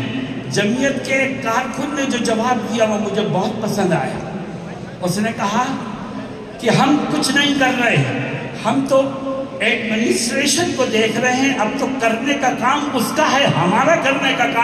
جمعیت کے کارکن نے جو جواب دیا وہ مجھے بہت پسند آیا۔ اس نے کہا کہ ہم کچھ نہیں کر رہے ہیں، ہم تو ایڈمنسٹریشن کو دیکھ رہے ہیں، اب تو کرنے کا کام اس کا ہے، ہمارا کرنے کا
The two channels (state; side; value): identical; both; correlation 1.00